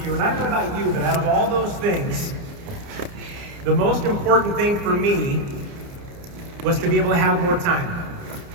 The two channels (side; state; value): left; late; 29 ms